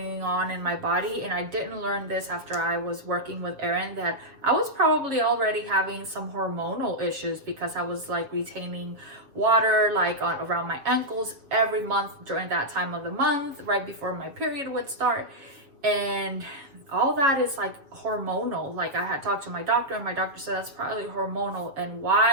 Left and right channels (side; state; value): left; late; 7.2 ms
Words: on in my body, and I didn't learn this after I was working with Erin, that I was probably already having some hormonal issues, because I was like retaining water like around my ankles every month during that time of the month, right before my period would start. And all that is like hormonal. Like, I had talked to my doctor, and my doctor said that's probably hormonal. And